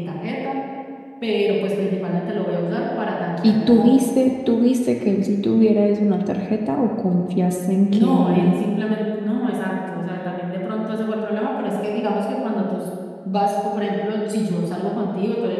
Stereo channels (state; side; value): identical; both; correlation 1.00